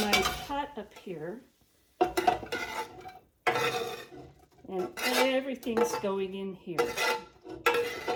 pot up here, and everything's going in here.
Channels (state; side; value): identical; both; correlation 1.00